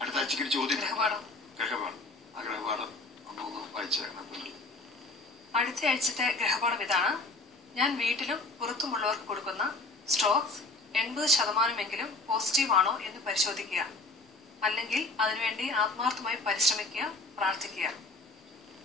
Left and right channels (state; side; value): quieter; right; 3.1 dB